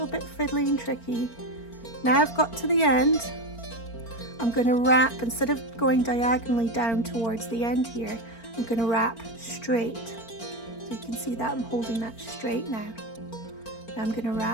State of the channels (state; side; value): late; right; 4.4 ms